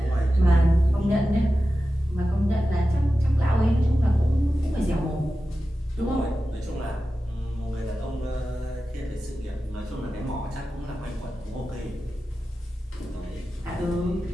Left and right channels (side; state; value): both; normal; correlation 0.93